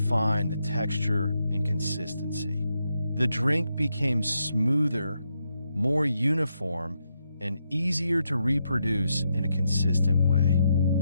the texture and consistency. The drink became smoother, more uniform, and easier to reproduce in a consistent way.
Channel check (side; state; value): both; inverted; correlation -0.81